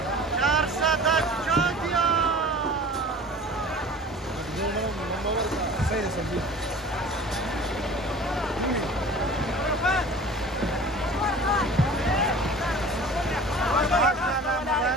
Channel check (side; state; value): both; normal; correlation 0.42